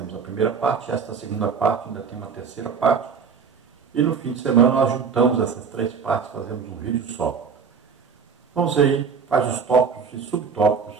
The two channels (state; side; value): quieter; left; 6.0 dB